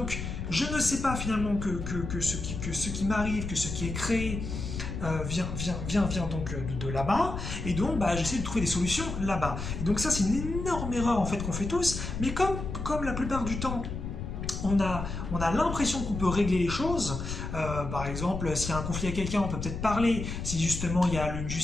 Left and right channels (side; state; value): left; noise; rumble, 5 dB below the sound